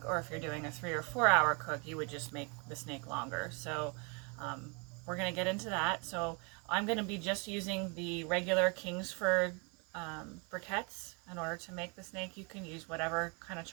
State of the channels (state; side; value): quieter; left; 33.2 dB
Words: or if you're doing a 3 or 4 hour cook, you would just make the snake longer. So we're going to get into that. So I'm going to be just using the regular Kingsford briquettes in order to make the snake. You can use whatever kind of